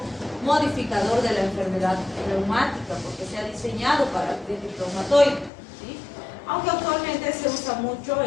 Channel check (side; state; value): right; drops out; at 5.5 s